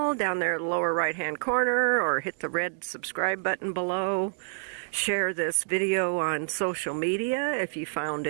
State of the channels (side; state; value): left; silent; digital silence